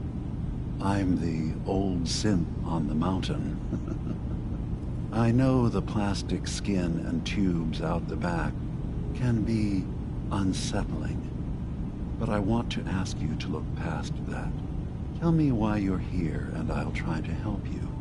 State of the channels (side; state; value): both; identical; correlation 1.00